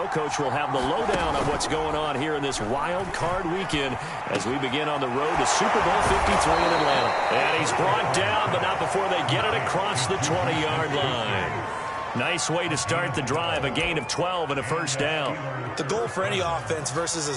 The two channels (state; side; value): identical; both; correlation 1.00